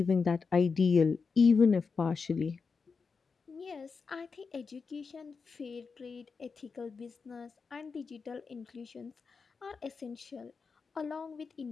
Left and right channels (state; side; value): quieter; right; 5.0 dB